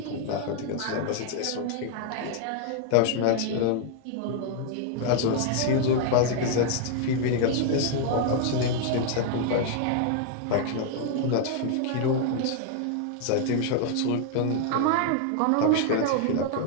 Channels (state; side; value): different; both; correlation 0.00